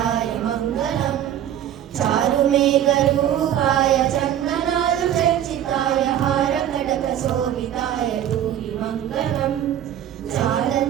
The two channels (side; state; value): left; quieter; 10.8 dB